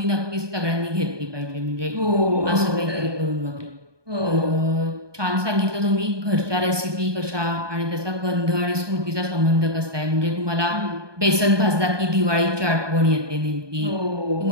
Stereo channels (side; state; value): left; late; 1.2 ms